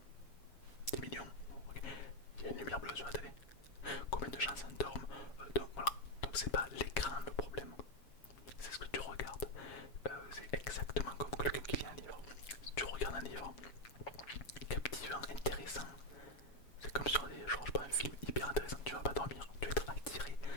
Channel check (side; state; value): right; late; 7.3 ms